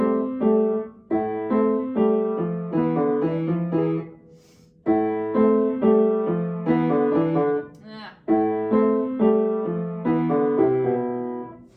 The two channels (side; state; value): both; identical; correlation 1.00